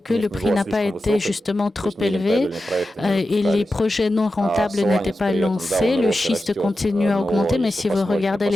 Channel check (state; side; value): normal; both; correlation 0.92